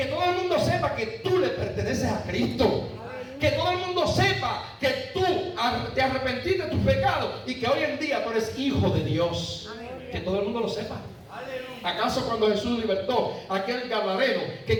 todo el mundo sepa que tú le perteneces a Cristo. Que todo el mundo sepa que tú te arrepentiste de tus pecados y que hoy en día tú eres hijo de Dios. Que todo el mundo lo sepa. ¿Acaso cuando Jesús libertó a aquel gadareno que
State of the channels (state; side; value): identical; both; correlation 1.00